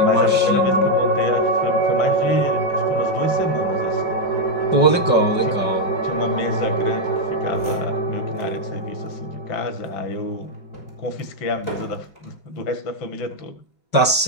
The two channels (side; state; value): right; late; 5.3 ms